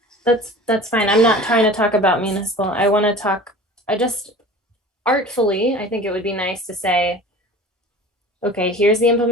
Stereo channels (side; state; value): both; normal; correlation 0.40